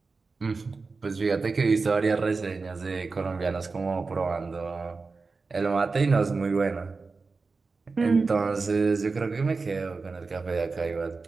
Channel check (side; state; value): left; quieter; 4.2 dB